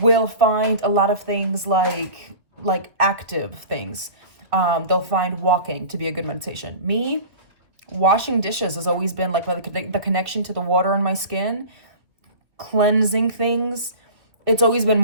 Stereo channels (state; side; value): late; left; 2.3 ms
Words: find a lot of things like active things. They'll find walking to be a good meditation. Me, washing dishes has always been like the connection to the water on my skin, cleansing things. It's always been